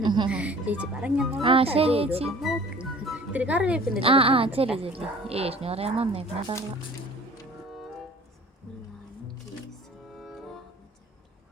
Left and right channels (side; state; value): both; normal; correlation 0.47